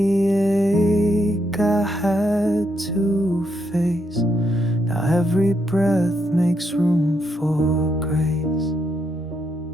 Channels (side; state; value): both; normal; correlation 0.78